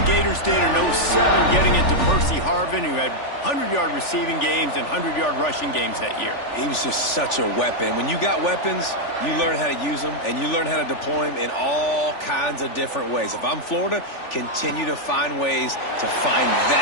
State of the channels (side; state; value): right; late; 3.4 ms